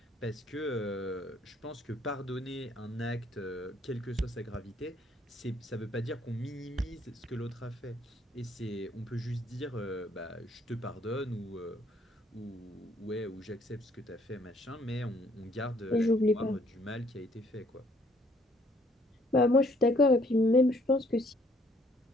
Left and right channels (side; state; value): both; normal; correlation 0.64